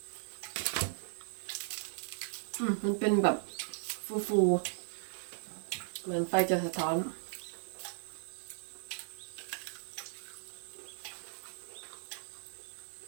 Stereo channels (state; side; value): silent; left; 53 dB below the other